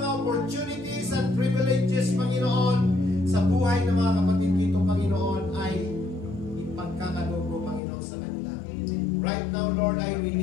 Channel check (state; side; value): drops out; right; at 7.8 s